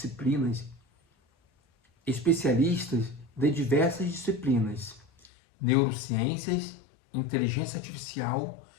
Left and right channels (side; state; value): right; drops out; at 5.3 s